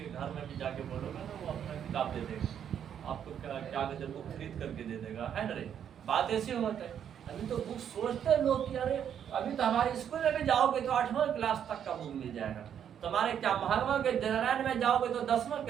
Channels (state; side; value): quieter; left; 8.9 dB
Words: घर में भी जाके बोलोगे ना, वो अपना किताब दे देगा आपको, क्या गजब को खरीद करके दे देगा, है ना रे? बात ऐसी होता है। अभी तो बुक सोचते हैं लोग कि अरे अभी तो हमारे स्कूल में भी जाओगे तो 8वां क्लास तक का बुक मिल जाएगा, तुम्हारे क्या महात्मा के जनरल में जाओगे तो 10वां